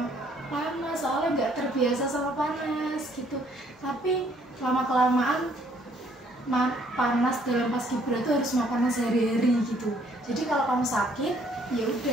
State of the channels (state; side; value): normal; both; correlation 0.64